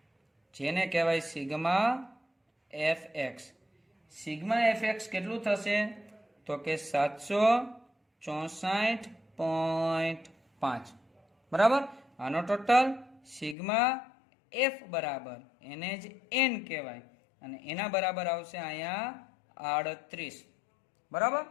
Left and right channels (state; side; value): drops out; right; at 13.6 s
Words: જેને કહેવાય sigma F x. Sigma F x કેટલું થશે? તો કે 764.5. બરાબર. આનો ટોટલ સિગ્મા એફ બરાબર એને જ એન કહેવાય, અને એના બરાબર આવશે અહીંયા 38. બરાબર,